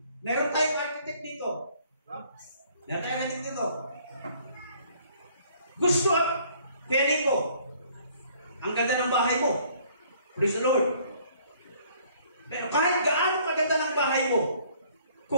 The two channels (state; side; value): inverted; both; correlation -0.59